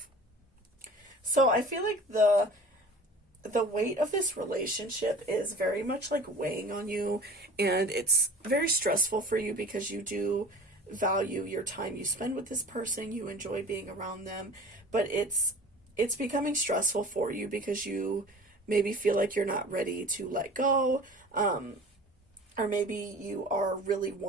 So I feel like the weight of this relationship is very much like weighing on you, and it's very stressful for you because you do value your time you spend with this person. You enjoy being around them, but it's becoming stressful for you because you maybe feel like you're not ready to let go, or maybe you are really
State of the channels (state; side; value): normal; both; correlation 0.40